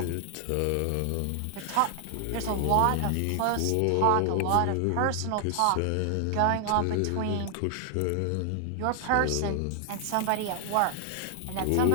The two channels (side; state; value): both; different; correlation 0.00